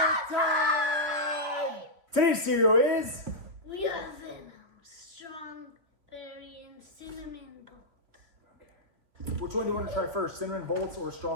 time! Today's cereal is... We have Venom, Strawberry, and Cinnamon Bolt. Okay. Which one do you want to try first? Cinnamon Bolts or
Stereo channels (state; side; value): late; left; 2.8 ms